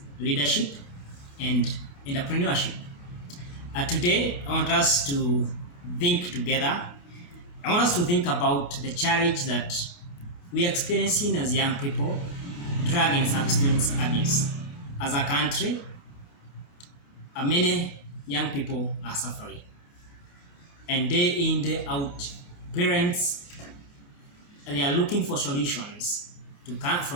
leadership, and entrepreneurship. Today, I want us to think together. I want us to think about the challenge that we are experiencing as young people, drug and substance abuse. As a country, many young people are suffering. And day in, day out, parents they are looking for solutions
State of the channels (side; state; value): right; late; 28 ms